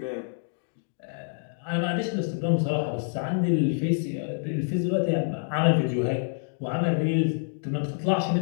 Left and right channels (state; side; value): silent; right; digital silence